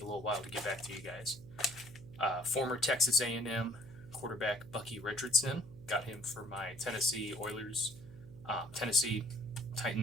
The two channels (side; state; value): right; noise; hum, 17 dB below the sound